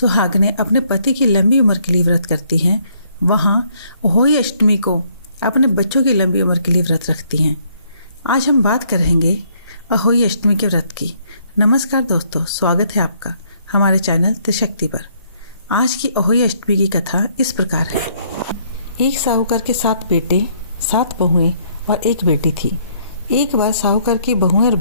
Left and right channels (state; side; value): inverted; both; correlation -0.68